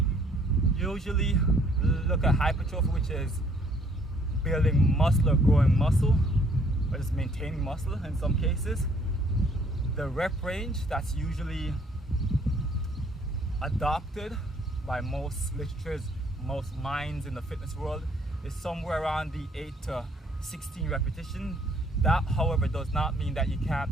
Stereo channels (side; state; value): both; normal; correlation 0.63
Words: usually look at hypertrophy, which is building muscle or growing muscle, or just maintaining muscle in some cases. The rep range that's usually adopted by most literatures, most minds in the fitness world, is somewhere around the 8 to 16 repetition. That, however, does not mean that you